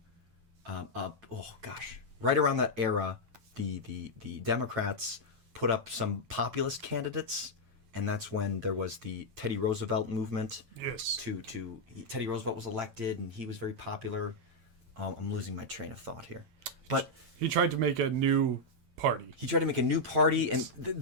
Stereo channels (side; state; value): left; late; 8.9 ms